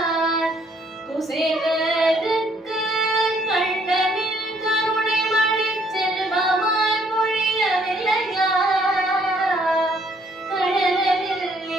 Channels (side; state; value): both; normal; correlation 0.66